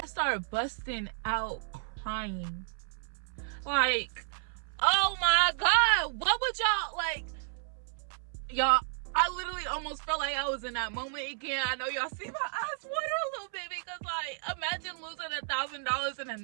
started busting out crying. Like, oh my God, what would y'all, like, y'all, I literally almost felt like I was in that moment again. I know y'all see my eyes water a little bit, because, like, imagine losing $1,000 in a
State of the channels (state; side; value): silent; left; 56 dB below the other